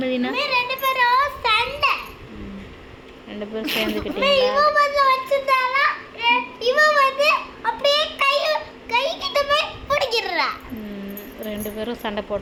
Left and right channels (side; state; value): both; identical; correlation 1.00